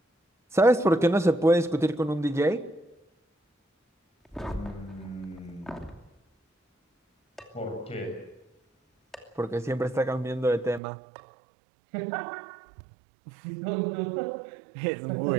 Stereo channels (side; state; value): left; drops out; at 10.8 s